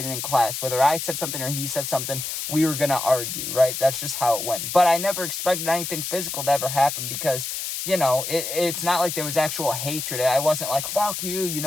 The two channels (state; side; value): noise; left; hiss, 4 dB below the sound